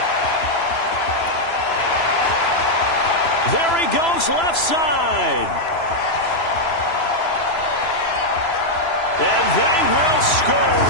There he goes, left side. And they will score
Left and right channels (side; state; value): right; late; 3.0 ms